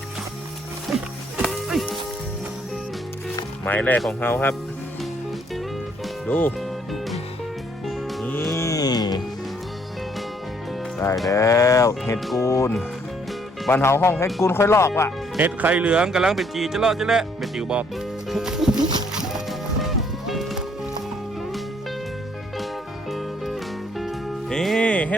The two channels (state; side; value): normal; both; correlation 0.66